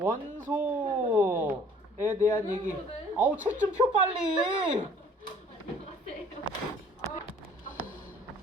대한 얘기. 아우, 책 좀 펴 빨리.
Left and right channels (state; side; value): normal; both; correlation 0.55